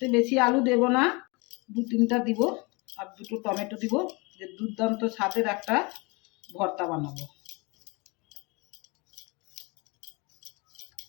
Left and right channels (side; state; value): right; quieter; 27.9 dB